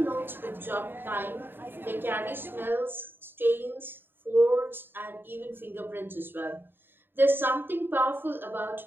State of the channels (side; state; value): left; late; 0.098 ms